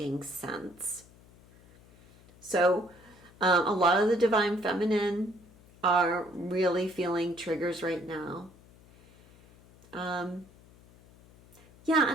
sense. So a lot of the Divine Feminine are really feeling triggers right now. And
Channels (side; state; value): left; noise; hum, 25 dB below the sound